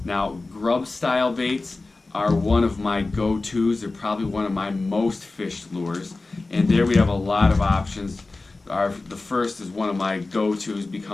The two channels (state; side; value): quieter; right; 3.4 dB